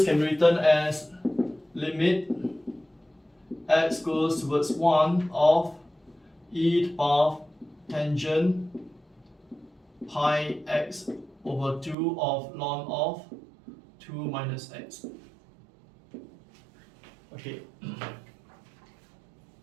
can be written as limit x goes towards 1 of e to the power of tangent pi x over 2 of ln of 2 minus x. Okay.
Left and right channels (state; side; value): drops out; left; at 12.0 s